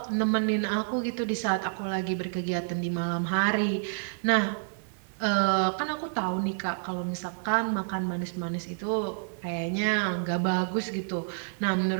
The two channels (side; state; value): left; silent; digital silence